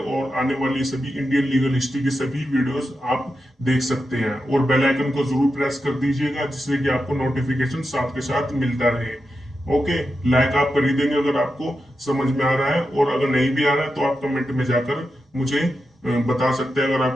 आने वाली सभी इंडियन लीगल हिस्ट्री की सभी वीडियोस आप देख सकते हैं। और बेल आइकन को जरूर प्रेस कर दीजिएगा, जिससे कि आपको नोटिफिकेशन साथ के साथ मिलता रहे। ओके, लाइक आप कर ही देंगे अगर आपको समझ में आ रहा है, और अगर नहीं भी आ रहा है तो आप कमेंट में जाकर मुझे बता सकते हैं। अगर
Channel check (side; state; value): both; normal; correlation 0.89